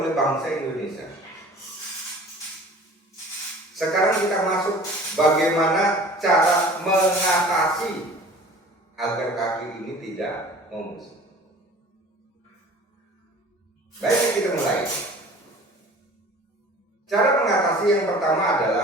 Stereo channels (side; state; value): both; normal; correlation 0.45